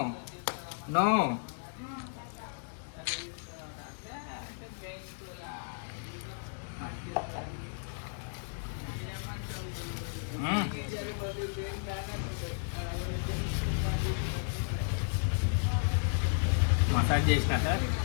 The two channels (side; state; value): right; silent; digital silence